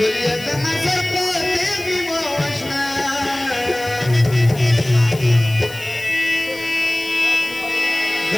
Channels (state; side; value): noise; left; hiss, 17 dB below the sound